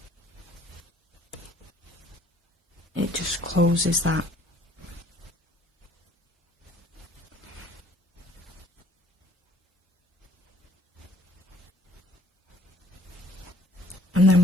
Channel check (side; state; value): both; normal; correlation 0.58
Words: it just closes that. And